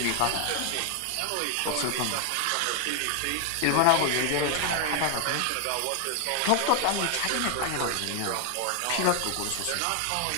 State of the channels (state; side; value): different; both; correlation 0.00